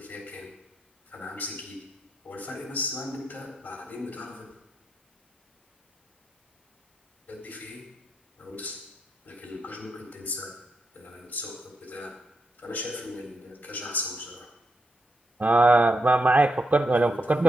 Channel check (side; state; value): both; normal; correlation 0.84